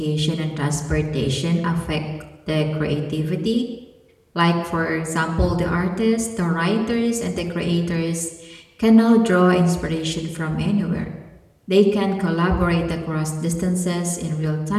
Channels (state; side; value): identical; both; correlation 1.00